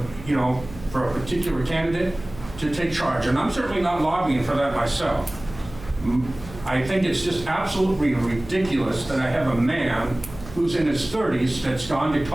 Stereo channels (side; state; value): right; noise; hum, 16 dB below the sound